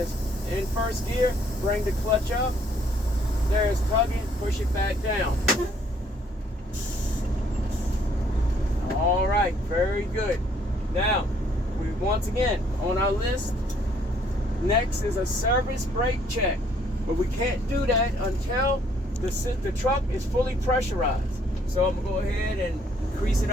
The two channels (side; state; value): both; normal; correlation 0.65